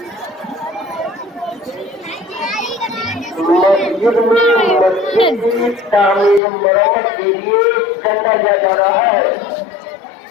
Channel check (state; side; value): drops out; right; at 6.4 s